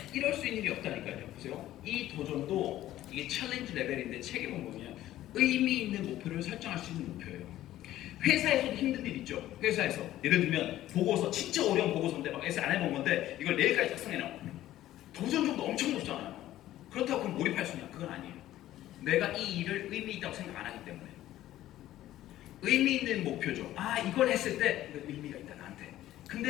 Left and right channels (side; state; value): right; quieter; 14.0 dB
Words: 이럴 수 있는 일이 없다니까요. 보세요. 이 도전도 이게 챌린지 레벨인데 책에 보면 의미 있는 목표를 설정할 수 있는 목표예요. 회사에서도 힘든 일 있죠. 회사에서 예를 들면 보고서 진짜 어려운 보고서인데 막 에세 안 해본 건데 이걸 내일까지 작성해놔. 도전 정도 엄청 높잖아요. 그렇다고 그럼 몰입할 수 있냐? 그건 아니에요. 내가 이 일을 의미 있다고 생각 안 하기 때문에. 의미 있는 목표죠. 이걸 했을 때 의미가 있다 나한테.